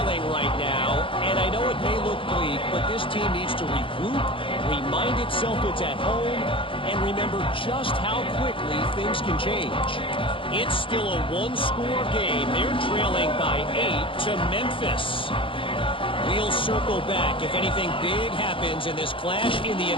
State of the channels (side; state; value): right; late; 0.25 ms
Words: right now, and I know it may look bleak, but this team needs to regroup, remind itself it's at home, and remember just how quickly things can change. It's still a one-score game. They're trailing by 8 to Memphis. We'll circle back. If anything big happens in this clash in the